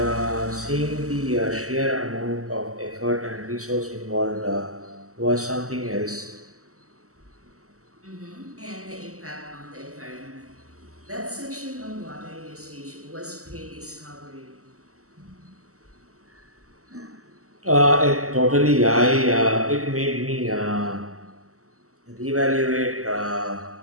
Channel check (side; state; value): left; late; 0.65 ms